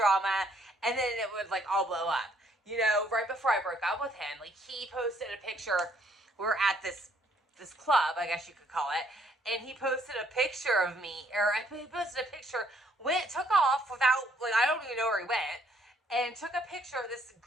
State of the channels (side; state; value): both; normal; correlation 0.67